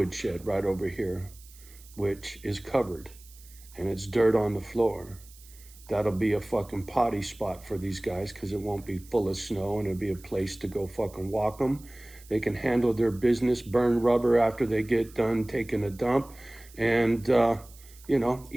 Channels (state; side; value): noise; right; hiss, 23 dB below the sound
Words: shed right over here, which is covered and it's dirt on the floor. That'll be a fucking potty spot for these guys because it won't be full of snow and it'll be a place to go fucking walk them. They can handle their business, burn rubber after they get done taking a dump, and,